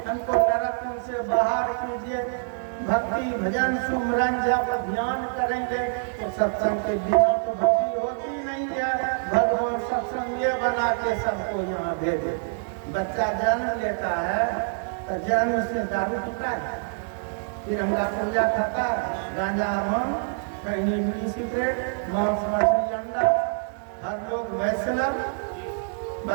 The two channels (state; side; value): silent; left; 61 dB below the other